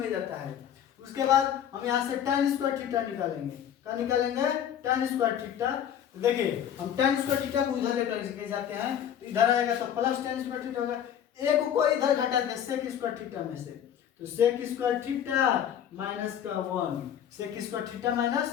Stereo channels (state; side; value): quieter; right; 9.6 dB